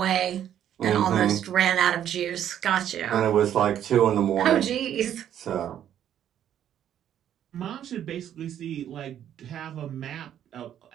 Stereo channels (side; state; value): left; quieter; 10.4 dB